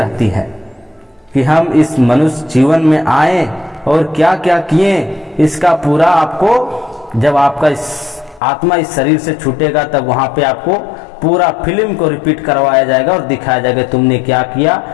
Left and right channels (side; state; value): right; drops out; at 8.4 s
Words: है कि हम इस मनुष्य जीवन में आए और क्या क्या किए। इसका पूरा आपको, जब आपका इस आत्मा इस शरीर से छूटेगा, तब वहां पे आपको पूरा फिल्म को रिपीट करवाया जाएगा और दिखाया जाएगा तुमने क्या किया,